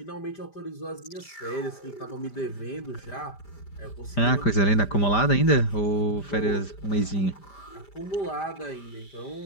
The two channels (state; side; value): late; right; 5.0 ms